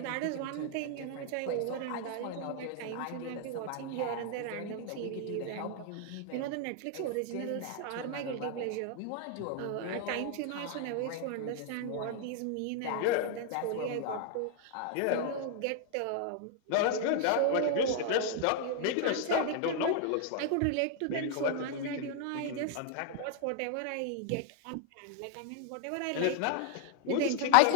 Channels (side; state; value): both; different; correlation 0.00